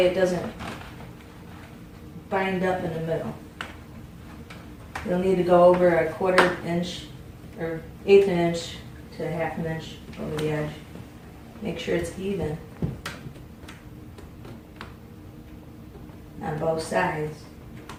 it doesn't bind up in the middle. You'll need to go over a 1/4 inch or 1/8 inch to 1/2 inch over the edge. Make sure it's even on both sides.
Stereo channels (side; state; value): both; identical; correlation 1.00